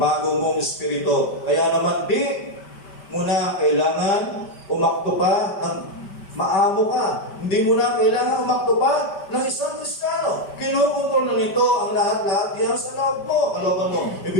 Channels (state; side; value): late; right; 5.1 ms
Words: mong Espiritu. Kaya naman di mo na kailangan umakto pa ng Maamo ka. Hindi mo na kailangan umakto pa ng isang Kristiyano. Kinukontrol na nito ang lahat-lahat yan sa loob mo, kalooban mo.